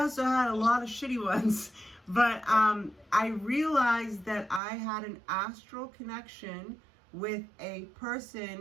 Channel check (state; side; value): drops out; left; at 4.6 s